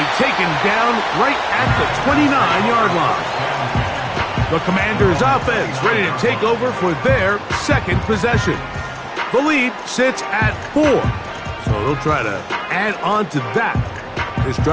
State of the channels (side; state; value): both; identical; correlation 1.00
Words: taken down right at the 29-yard line. The Commanders' offense ready to take over for their second possession. The lead sits at 4. So they'll try to add on to that. This